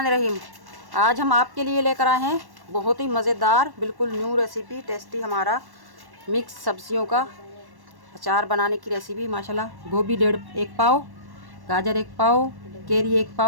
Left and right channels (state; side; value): late; left; 1.1 ms